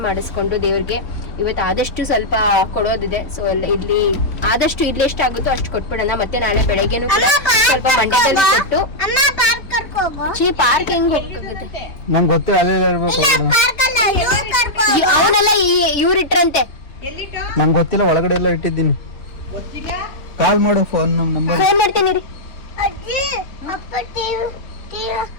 ಮಾಡಿಸ್ಕೊಂಡು ದೇವ್ರಿಗೆ ಇವತ್ತು ಆದಷ್ಟು ಸ್ವಲ್ಪ ಕೊಡೋದಿದೆ. ಸೊ ಇಲ್ಲಿ ಆದಷ್ಟು ಇಲ್ಲಿ ಎಷ್ಟಾಗುತ್ತೋ ಅಷ್ಟು ಕೊಟ್ಬಿಡೋಣ. ಮತ್ತೆ ನಾಳೆ ಬೆಳಗ್ಗೆನೂ ಕೂಡ ಸ್ವಲ್ಪ ಮಂಡ್ಯದಲ್ಲಿ ಕೊಟ್ಟು ಪಾರ್ಕ್ ಹೆಂಗ್ ಹೋಗಕ್ಕಾಗುತ್ತೆ? ನಂಗೆ ಗೊತ್ತಿಲ್ಲ, ಅಲ್ಲೇ ಇರ್ಬೇಕು. ಅವನೆಲ್ಲ ಇವ್ರು ಇಟ್ರಂತೆ. ನಂಗೆ ಗೊತ್ತಿಲ್ಲ, ಒಳಗಡೆ ಎಲ್ಲ ಇಟ್ಟಿದ್ದೀನಿ. ಕಾಲ್ ಮಾಡು, ಫೋನ್ ನಂಬರ್ ಫೋನ್ ಮಾಡ್ತೀನಿ ರೀ.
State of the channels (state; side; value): late; right; 3.5 ms